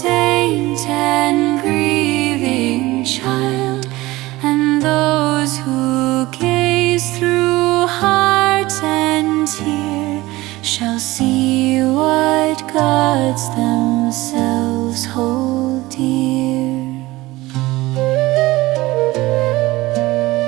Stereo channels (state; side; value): quieter; left; 19.2 dB